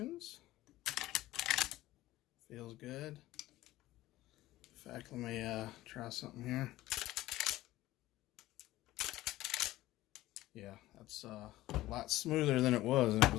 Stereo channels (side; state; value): right; quieter; 16.4 dB